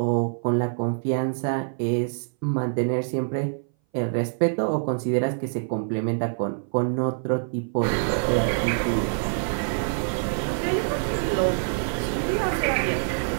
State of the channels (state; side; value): silent; left; 59 dB below the other